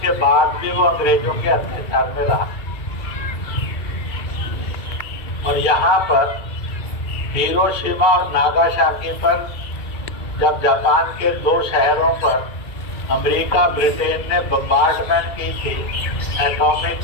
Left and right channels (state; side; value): late; right; 2.4 ms